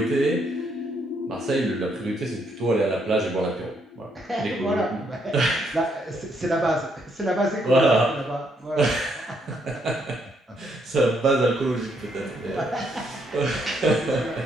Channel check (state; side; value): normal; both; correlation 0.73